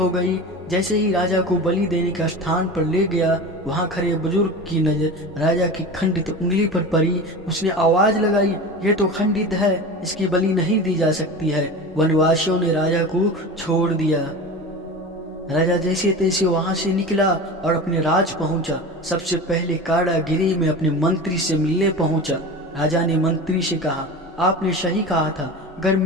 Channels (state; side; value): normal; both; correlation 0.31